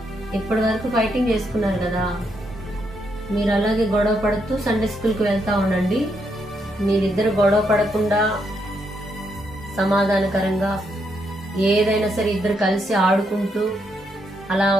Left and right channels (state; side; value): normal; both; correlation 0.78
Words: ఇప్పటి వరకు ఫైటింగ్ చేసుకున్నారు కదా, మీరు అలాగే గొడవ పడుతూ సండే స్కూల్కి వెళ్తూ ఉండండి. మీరిద్దరు గొడవ పడకుండా సమాధానకరంగా ఏదైనా సరే ఇద్దరు కలిసి ఆడుకుంటూ